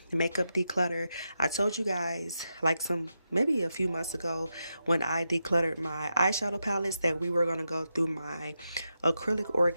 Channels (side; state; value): both; inverted; correlation -0.87